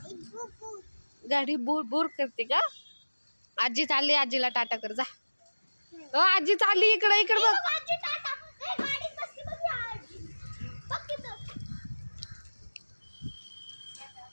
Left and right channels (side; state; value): both; inverted; correlation -1.00